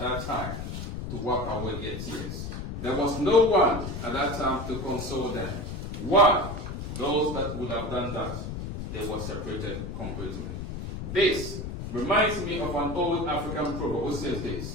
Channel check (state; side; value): noise; left; rumble, 6 dB below the sound